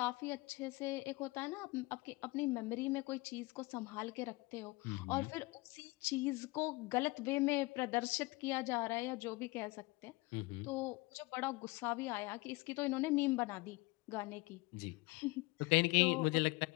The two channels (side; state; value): right; quieter; 23.1 dB